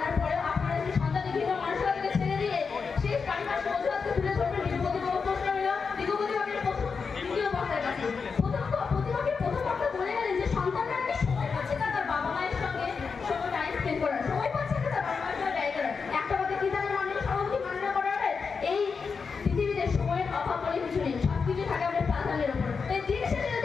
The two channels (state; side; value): quieter; right; 5.3 dB